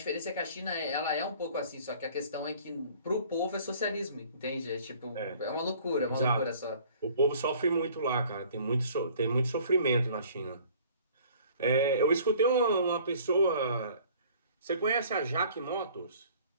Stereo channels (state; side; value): inverted; both; correlation -0.52